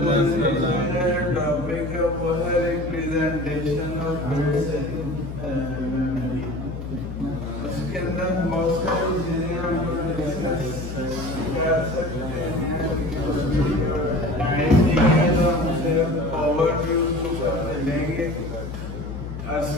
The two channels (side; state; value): left; noise; hum, 8 dB below the sound